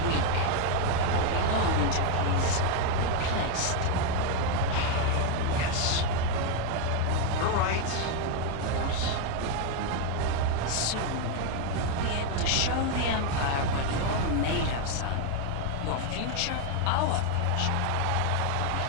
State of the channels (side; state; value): both; different; correlation 0.01